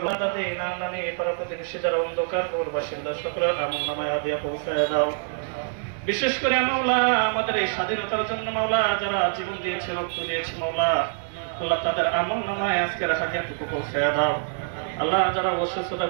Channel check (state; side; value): silent; left; digital silence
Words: দাদে নাম নানি পাড়া প্রতিবেশী যারা অন্ধকার পৌর বাসিন্দা সকলের আমল নামায় হাদিয়া পৌঁছায় দাও। বিশেষ করে মাওলা আমাদের এই স্বাধীনতার জন্য মাওলা যারা জীবন দিয়েছে, রক্ত দিয়েছে মাওলা, আল্লাহ তাদের আমল নামায় আজকের হাদিয়াটুকু পৌঁছায় দাও। আল্লাহ যারা অসুস্থতা